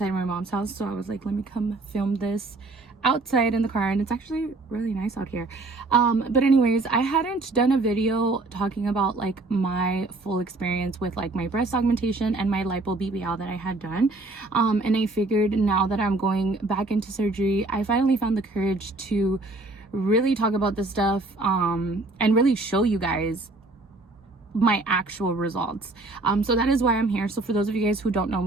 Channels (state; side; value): quieter; left; 3.1 dB